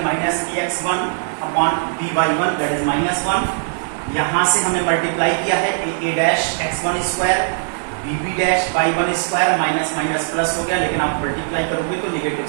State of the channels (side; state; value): left; silent; digital silence